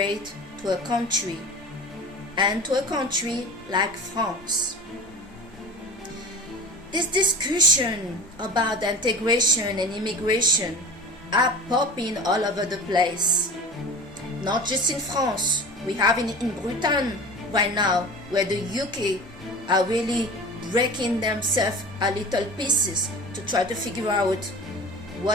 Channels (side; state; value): both; normal; correlation 0.36